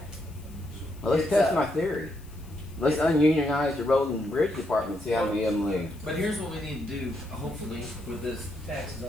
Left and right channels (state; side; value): noise; left; hiss, 26 dB below the sound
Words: Well, let's It's, test my theory. Let's ununionize the road and bridge department, see how many of them leave. But here's what we need to do, hopefully, with this taxes, I